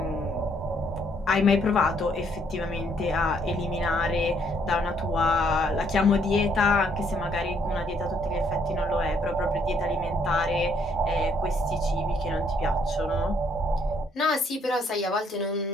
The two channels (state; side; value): normal; both; correlation 0.68